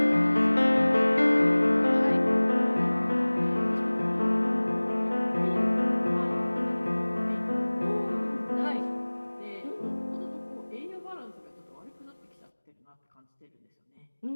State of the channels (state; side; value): inverted; both; correlation -1.00